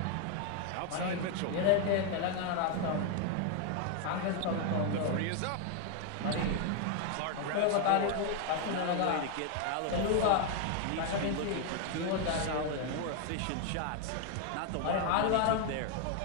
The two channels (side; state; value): both; different; correlation 0.01